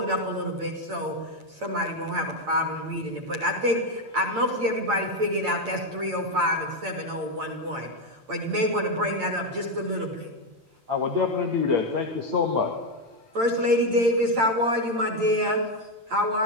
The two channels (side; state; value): left; late; 8.8 ms